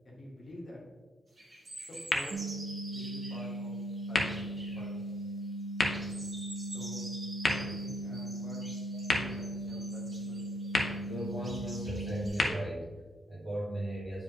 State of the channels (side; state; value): both; normal; correlation 0.72